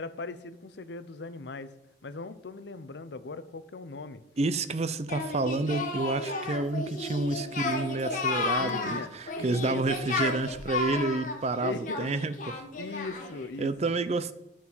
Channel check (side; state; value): both; normal; correlation 0.32